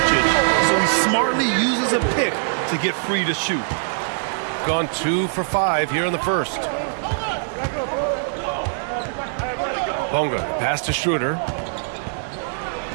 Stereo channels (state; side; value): silent; left; digital silence